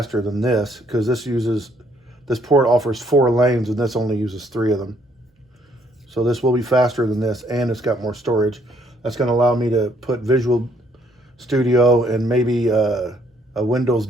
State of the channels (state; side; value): normal; both; correlation 0.67